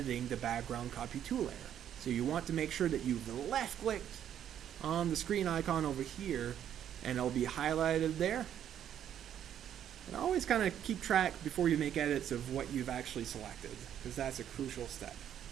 the background copy 2 layer. So you want to make sure that you've left clicked on the screen icon over here, and it'll be highlighted there. And always kind of keep track before you make edits of what you've actually selected, because that's a crucial step.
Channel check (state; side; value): quieter; left; 10.0 dB